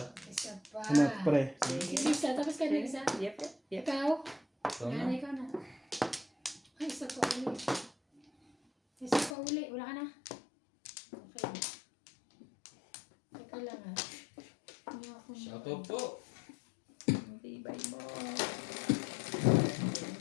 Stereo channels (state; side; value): drops out; right; at 9.3 s